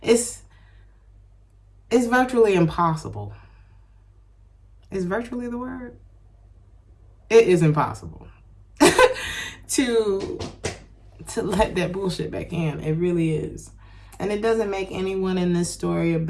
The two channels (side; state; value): both; identical; correlation 1.00